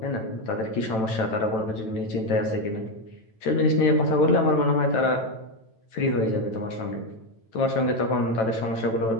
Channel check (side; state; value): right; late; 9.1 ms